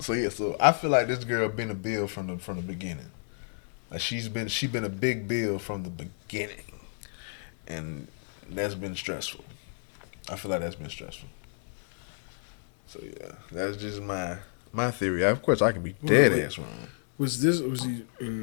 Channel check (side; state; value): right; silent; 58 dB below the other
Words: So yeah. So I feel like this girl been a bill from the beginning. Like she been a big bill from the beginning, and that's been stressful. I feel like that's been stressful. So yeah, that's just my theory. Of course, I can be dead ass wrong. Was he